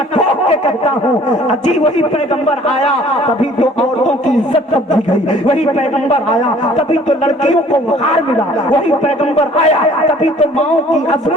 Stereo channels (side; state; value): both; normal; correlation 0.54